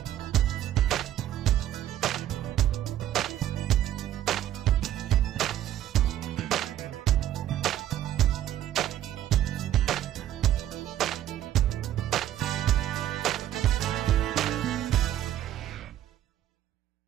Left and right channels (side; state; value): left; quieter; 12.2 dB